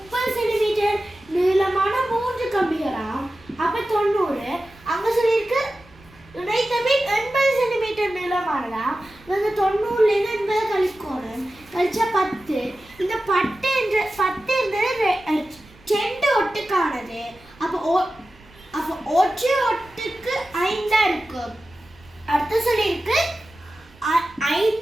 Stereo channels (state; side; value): noise; right; rumble, 26 dB below the sound